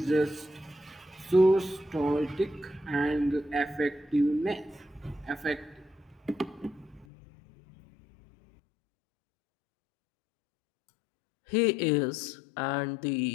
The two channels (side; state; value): right; drops out; at 7.1 s